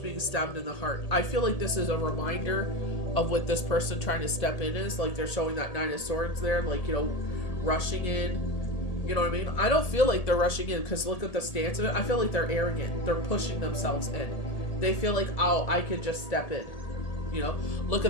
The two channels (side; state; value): right; late; 1.8 ms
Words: being stabbed in the heart. I feel like this is a reminder of what this person trying to step in is. Like, they're showing that Nine of Swords there, like, you know, rushing in. You know what I mean? I don't feel like they're rushing in because look at the stance of it. I feel like they're arrogant. They're pushing themselves in. They feel like, oh, I could just step in. You know, look